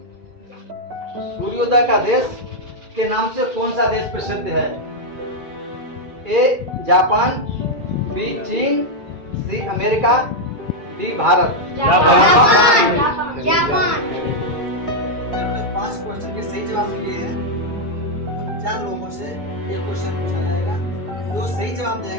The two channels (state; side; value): late; left; 2.3 ms